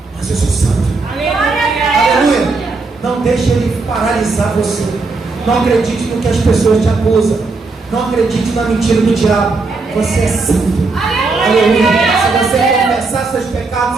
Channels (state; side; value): quieter; left; 3.8 dB